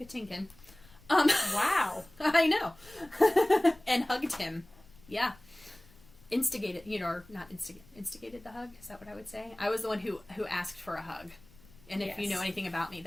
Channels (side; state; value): left; noise; rumble, 25 dB below the sound